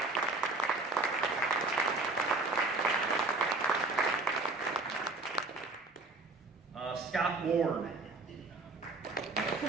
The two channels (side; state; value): left; quieter; 3.1 dB